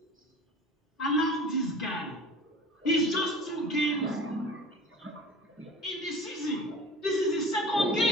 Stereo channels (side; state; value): both; normal; correlation 0.40